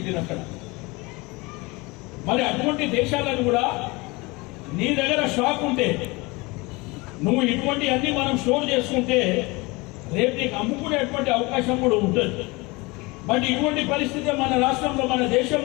అక్కడ. మరి అటువంటి దేశాలను కూడా నీ దగ్గర స్టాక్ ఉంటే నువ్వు ఇటువంటి అన్ని మనం స్టోర్ చేసుకుంటే రేపు నీకు అమ్ముకునేటువంటి అవకాశం కూడా ఉంటుంది. బట్ ఇటువంటి పరిస్థితి మన రాష్ట్రంలో మన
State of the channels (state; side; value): quieter; right; 24.7 dB